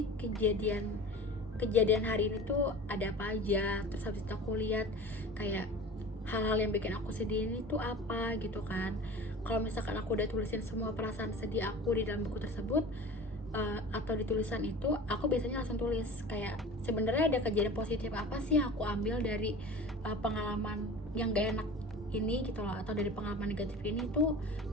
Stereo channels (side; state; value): both; normal; correlation 0.37